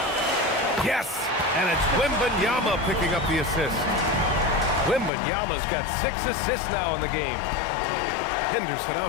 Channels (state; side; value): drops out; right; at 5.1 s